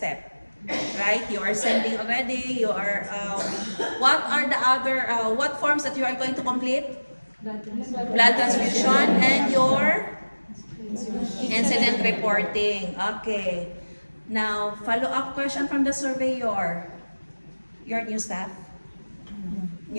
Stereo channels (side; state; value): both; inverted; correlation -1.00